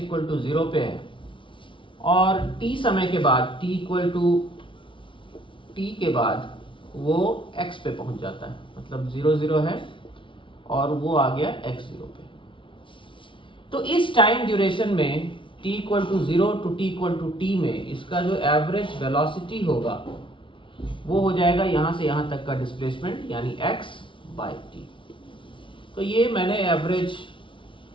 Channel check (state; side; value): late; right; 0.25 ms